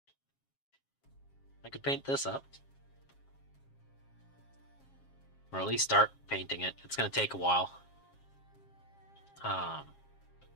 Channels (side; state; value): right; late; 7.4 ms